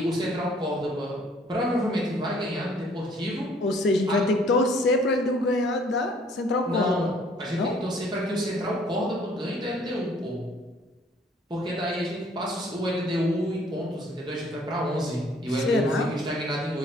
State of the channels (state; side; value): normal; both; correlation 0.59